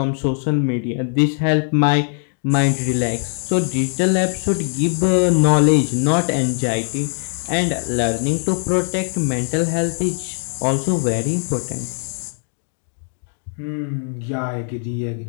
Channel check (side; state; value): right; silent; 66 dB below the other